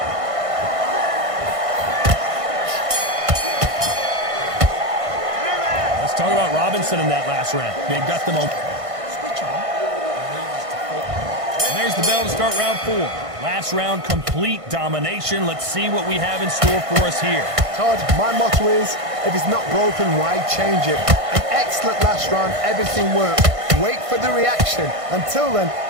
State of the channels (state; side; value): late; left; 1.5 ms